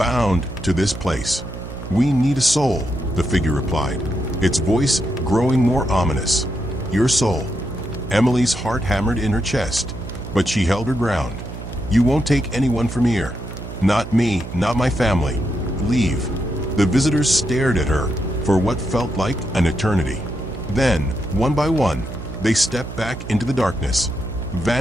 to this place. We need a soul," the figure replied, its voice growing more ominous. "Your soul." Emily's heart hammered in her chest, but she held her ground. "You won't take anyone from here. Not me, not my family. Leave." The visitors stared at her for what felt like an eternity. Then, one by one, they stepped back into the darkness,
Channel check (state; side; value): noise; right; hum, 10 dB below the sound